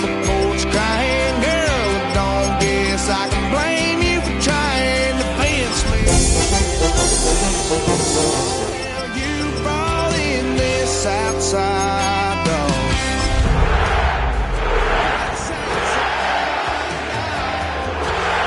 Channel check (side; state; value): both; identical; correlation 1.00